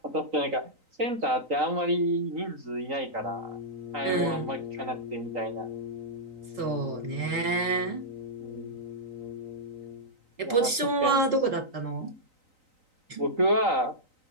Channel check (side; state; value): left; late; 4.0 ms